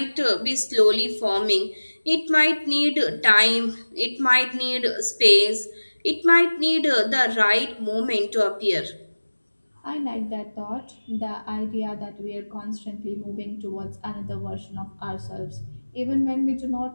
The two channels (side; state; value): both; inverted; correlation -1.00